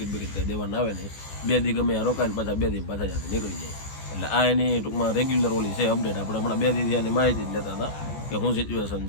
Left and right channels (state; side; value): late; right; 14 ms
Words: બિકિટ કંઈ દેવાના આવે નહીં. 2 દી ગમે ત્યાં રોકાય ને પાછા 2 દી પાછા ત્યાંથી નીકળી જાય. એટલે આ એની ટૂંકમાં રેગ્યુલર ઓલી છે અપડેટ. આપણે હમણાં 2 દી ત્યાંની માહિતી જ લેતા હતા કે શું સિચ્યુએશન